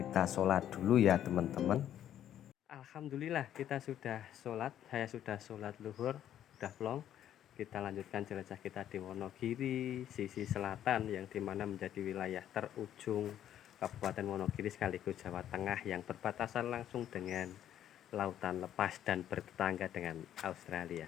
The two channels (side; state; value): right; quieter; 10.9 dB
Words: sholat dulu ya teman-teman. Alhamdulillah kita sudah sholat, saya sudah sholat luhur, udah plong. Kita lanjutkan jelajah kita di Wonogiri sisi selatan, yang dimana menjadi wilayah terujung Kabupaten Wonogiri sekaligus Jawa Tengah, yang berbatasan langsung dengan lautan lepas dan bertetangga dengan Australia.